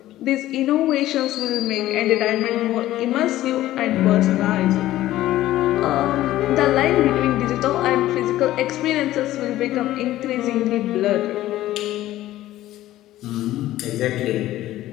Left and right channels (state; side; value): quieter; right; 14.8 dB